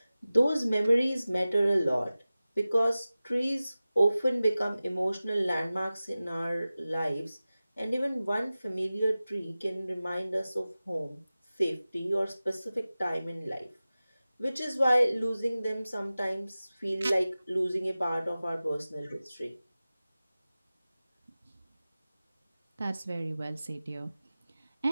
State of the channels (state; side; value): inverted; both; correlation -0.96